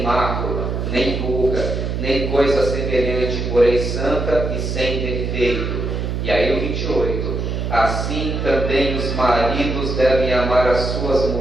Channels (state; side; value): noise; right; hum, 2 dB below the sound